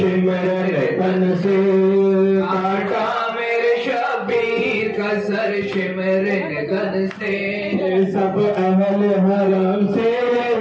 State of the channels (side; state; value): both; identical; correlation 1.00